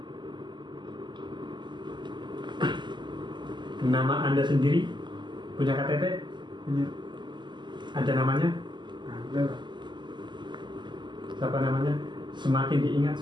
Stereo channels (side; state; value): left; late; 0.22 ms